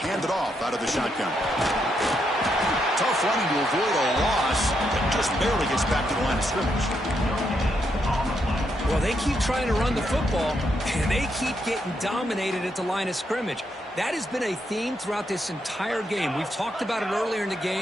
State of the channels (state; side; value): normal; both; correlation 0.79